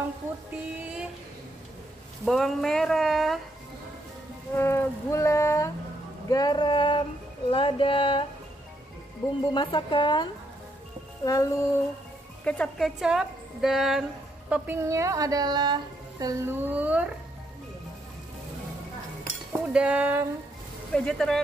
putih, bawang merah, gula, garam, lada, bumbu masakan, lalu kecap-kecap, dan toppingnya adalah telur, udang,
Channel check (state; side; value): normal; both; correlation 0.76